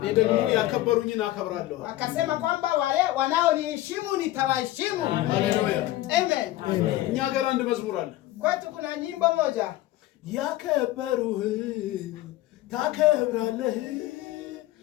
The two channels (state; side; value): quieter; right; 15.8 dB